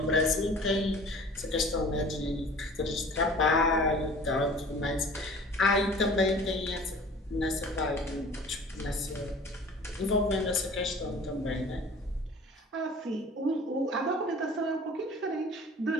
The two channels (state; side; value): normal; both; correlation 0.45